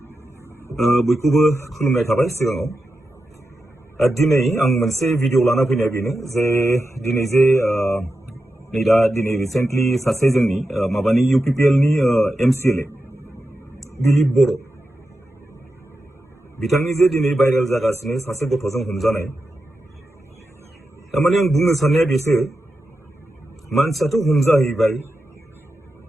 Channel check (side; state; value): both; normal; correlation 0.90